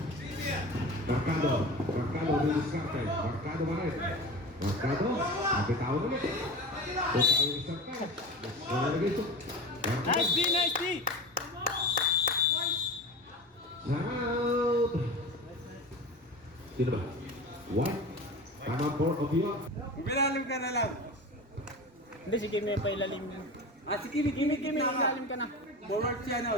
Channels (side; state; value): both; normal; correlation 0.31